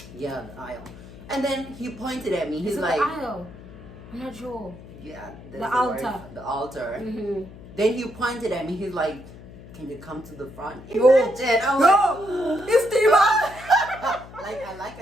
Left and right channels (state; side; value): noise; left; hum, 17 dB below the sound